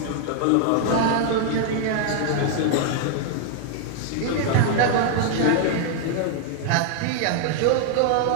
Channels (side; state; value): both; different; correlation 0.00